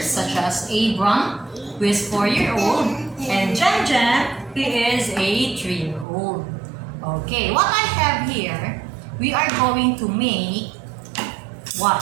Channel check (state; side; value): drops out; left; at 6.1 s